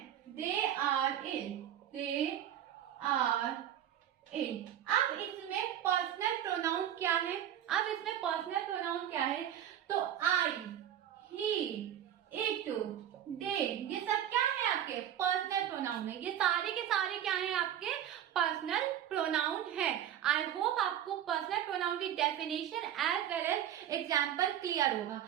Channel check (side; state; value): left; quieter; 10.6 dB